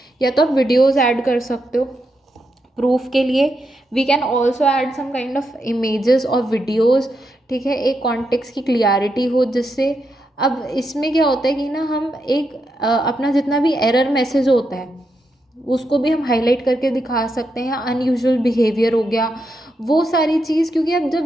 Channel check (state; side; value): normal; both; correlation 0.83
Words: या तो आप वीडियोज़ ऐड कर सकते हो प्रूफ के लिए. We can also add some kind of images और वीडियोज़, ठीक है, एक कॉन्टेक्स्ट की क्लियरिटी हो जिससे. अब इसमें क्या होता है कि ना हम एक अपना जितना भी एरर मैसेज होता है उसको भी हम हाईलाइट करके दिखा सकते हैं. अनयूजुअल बिहेवियर हो गया, वो सारी चीज़, क्योंकि अब